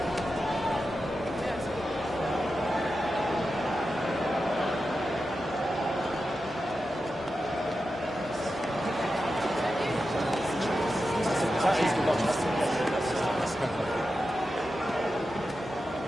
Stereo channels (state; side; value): normal; both; correlation 0.90